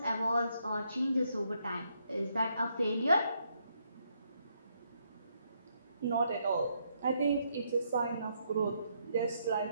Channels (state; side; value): inverted; both; correlation -0.75